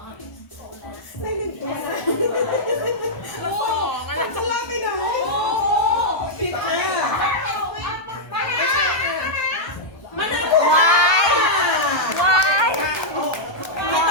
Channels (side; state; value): right; late; 1.2 ms